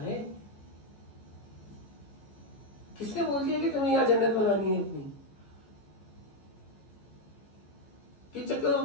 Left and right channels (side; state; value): right; late; 14 ms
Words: किसने बोल दिया कि तुम्हें यहां जन्नत बनानी है अपनी? किस चक्कर